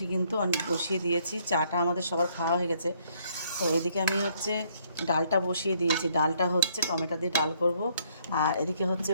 কিন্তু আমি বসিয়ে দিয়েছি। চাটা আমাদের সবার খাওয়া হয়ে গেছে। তো এদিকে আমি হচ্ছে ডালটা বসিয়ে দিয়েছি। ডালটা হচ্ছে টমেটো দিয়ে ডাল করব। আর এদিকে হচ্ছে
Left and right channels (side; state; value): both; inverted; correlation -0.67